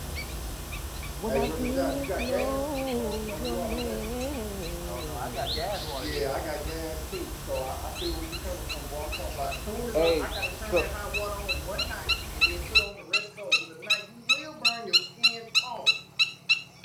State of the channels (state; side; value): identical; both; correlation 1.00